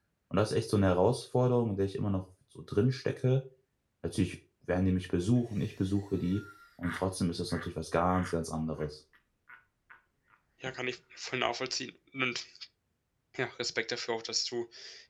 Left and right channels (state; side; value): identical; both; correlation 1.00